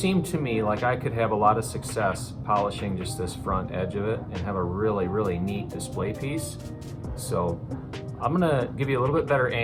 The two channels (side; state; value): both; identical; correlation 1.00